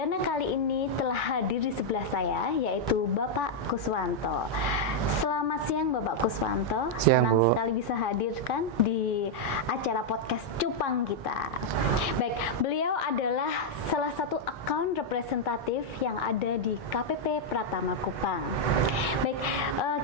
kali ini telah hadir di sebelah saya, yaitu Bapak Kuswanto. Selamat siang Bapak Kuswanto, senang sekali bisa hadirkan di acara podcast Cupang kita. Baik, beliau adalah salah satu account representatif yang ada di KPP Pratama Kupang. Baik,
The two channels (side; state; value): both; normal; correlation -0.02